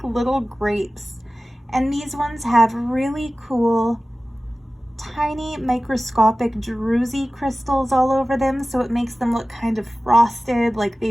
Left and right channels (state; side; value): normal; both; correlation 0.96